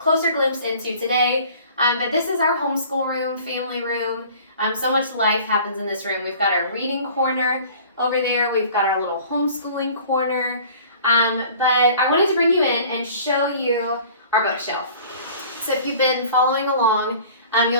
glimpse into today. But this is our homeschool room, family room. So much life happens in this room. We've got our reading corner over there. We've got our little homeschooling corner. But I wanted to bring you in and show you our bookshelf. So if you've been following along,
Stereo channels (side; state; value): both; inverted; correlation -0.47